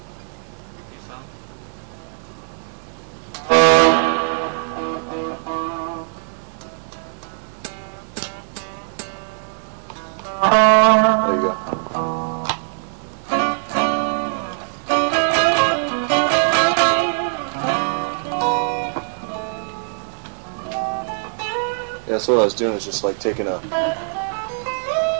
There you go. Yeah, so what I was doing is just like taking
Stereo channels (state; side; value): silent; left; 60 dB below the other